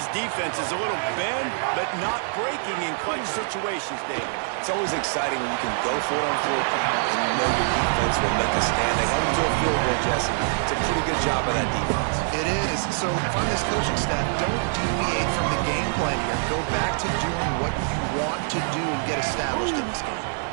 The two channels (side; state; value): left; silent; digital silence